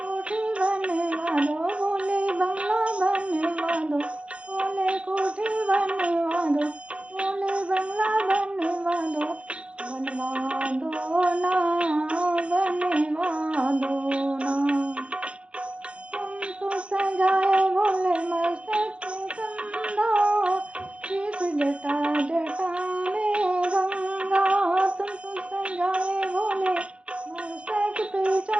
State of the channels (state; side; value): late; left; 0.060 ms